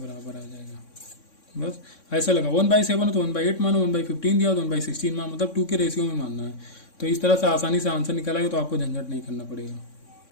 आ जाएगा। बस ऐसा लगा, 1/7 है तो 1/8 मानो, 1/15 दिया तो 1/16 मानो, मतलब 2 के रेशियो में मानना है। तो इस तरह से आसानी से आंसर निकालेगा, तो आपको झंझट नहीं करना पड़ेगा।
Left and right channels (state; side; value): late; right; 3.6 ms